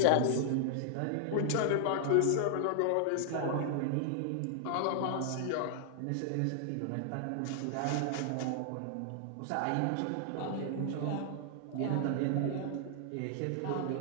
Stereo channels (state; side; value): different; both; correlation -0.01